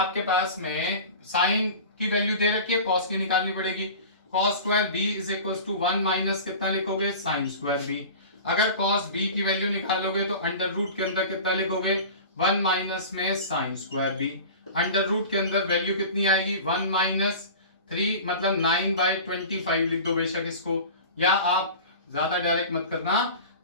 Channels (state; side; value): inverted; both; correlation -0.36